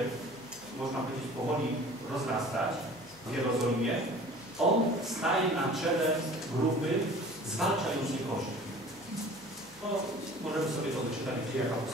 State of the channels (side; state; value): left; noise; hum, 26 dB below the sound